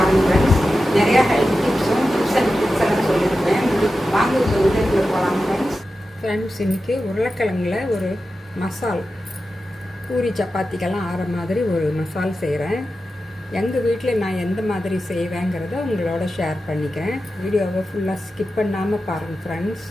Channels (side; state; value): both; normal; correlation 0.92